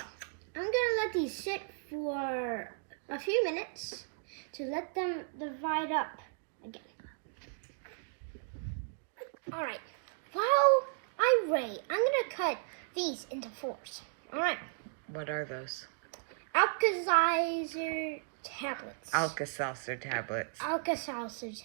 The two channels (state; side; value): silent; left; digital silence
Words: gonna let these sit for a few minutes to let them divide up again. Alright, while I wait, I'm gonna cut these into 4s. Alright. What are those? Alka-Seltzer tablets. Alka-Seltzer tablets. Alka-Seltzer